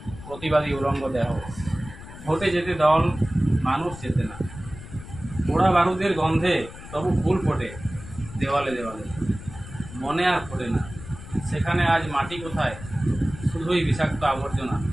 প্রতিবাদী উলঙ্গ দেহ। ভোটে যেতে দল, মানুষ যেতে না। পোড়া বারুদের গন্ধে তবু ফুল ফোটে দেওয়ালে দেওয়ালে, মনে আর ফোটে না। সেখানে আজ মাটি কোথায়, শুধুই বিষাক্ত আবর্জনা।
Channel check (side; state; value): left; noise; rumble, 14 dB below the sound